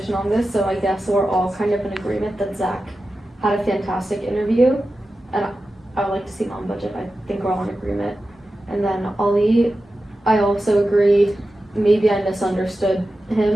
on this, so I guess we're all kind of in agreement that Zach had a fantastic interview. And I would like to see him on budget. I think we're all in agreement. And then Ali, I also agree, maybe I misunderstood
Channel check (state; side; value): normal; both; correlation 0.93